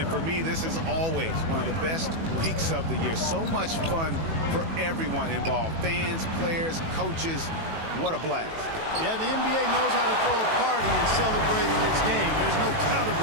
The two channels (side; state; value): left; late; 18 ms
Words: for me, this is always one of the best weeks of the year. So much fun for everyone involved. Fans, players, coaches. What a blast. Yeah, the NBA knows how to throw a party in celebrating its game. There's no doubt